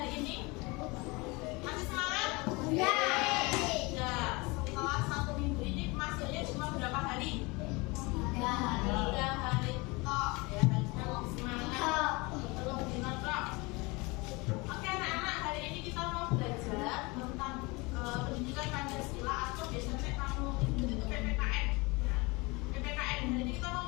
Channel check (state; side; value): quieter; right; 25.6 dB